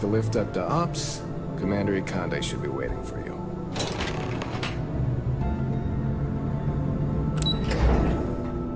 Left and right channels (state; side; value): identical; both; correlation 1.00